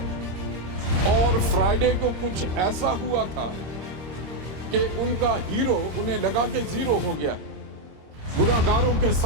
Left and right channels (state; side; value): late; left; 26 ms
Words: और फ्राइडे को कुछ ऐसा हुआ था कि उनका हीरो उन्हें लगा के जीरो हो गया। गुनाहगारों के